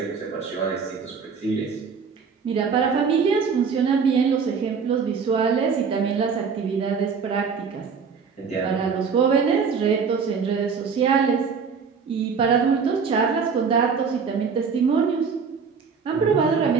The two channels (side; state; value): left; quieter; 5.8 dB